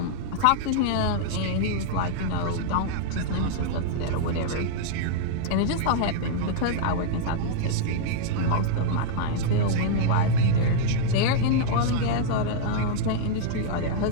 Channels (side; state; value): both; different; correlation -0.01